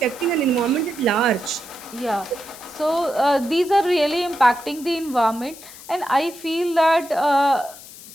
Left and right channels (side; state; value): left; noise; hiss, 17 dB below the sound